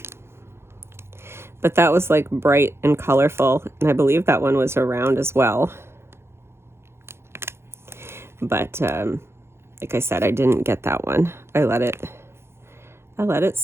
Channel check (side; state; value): left; late; 0.12 ms